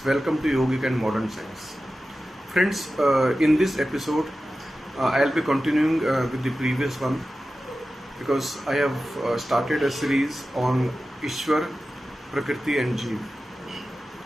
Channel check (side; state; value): both; normal; correlation 0.94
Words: welcome to Yogic and Modern Science. Friends, in this episode, I'll be continuing with the previous one because I have started a series on Ishwar, Prakriti and Jeev.